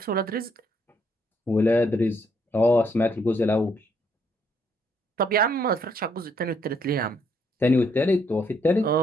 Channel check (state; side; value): normal; both; correlation 0.71